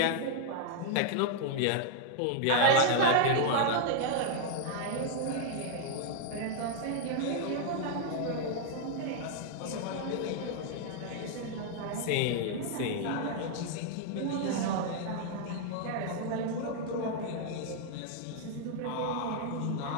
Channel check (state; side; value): different; both; correlation 0.00